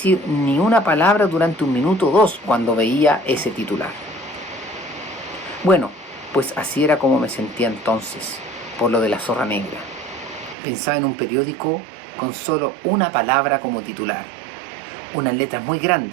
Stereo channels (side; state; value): left; drops out; at 10.6 s